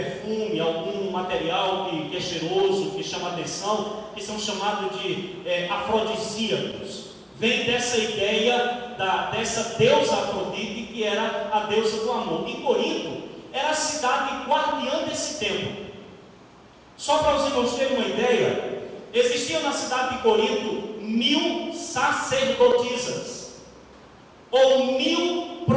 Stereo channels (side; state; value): both; identical; correlation 1.00